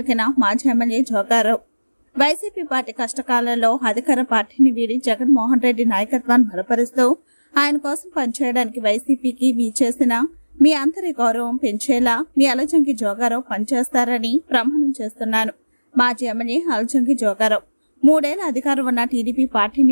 మాజీ ఎమ్మెల్యే జోగారావు. వైసీపీ పార్టీ కష్టకాలంలో అధికార పార్టీని వీడి జగన్మోహన్ రెడ్డి నాయకత్వాన్ని బలపరుస్తూ ఆయన కోసం పనిచేయడానికి వైసీపీకి చేసిన మీ అందరి గౌరవం పెంచేలా మీ అలజంగి జోగారావు పనిచేస్తారని ప్రమాణం చేస్తున్నాను. మాజీ ఎమ్మెల్యే అలజంగి జోగారావు 3 ఏళ్ల అధికారం ఉన్న టీడీపీ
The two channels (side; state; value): both; inverted; correlation -1.00